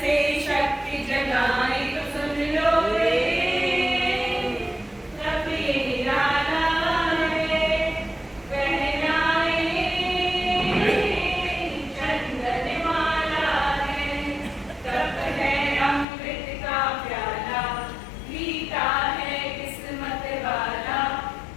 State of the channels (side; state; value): right; drops out; at 16.1 s